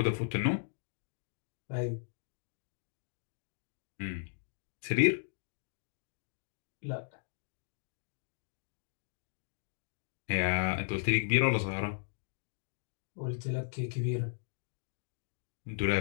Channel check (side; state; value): right; silent; digital silence